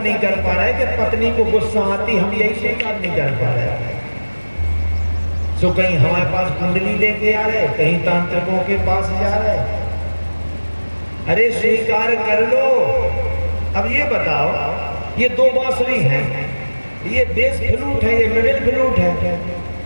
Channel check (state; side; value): inverted; both; correlation -1.00